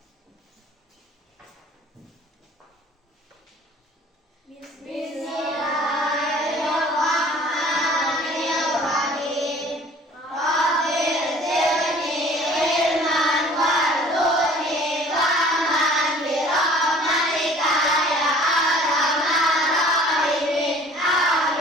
Bismillahirrahmanirrahim. Rabbil zidni ilman warzuqni fahman birahmatika ya arhamar rahimin.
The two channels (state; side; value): normal; both; correlation 0.50